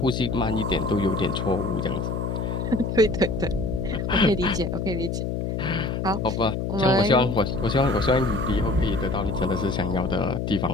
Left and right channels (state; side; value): noise; left; hum, 2 dB below the sound